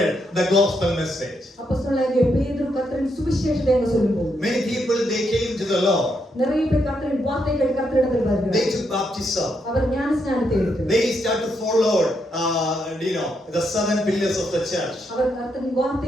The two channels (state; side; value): normal; both; correlation 0.79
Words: the gospel message. Many people, they came to the Lord. They took baptism. They started to follow the 7 pillars of the church.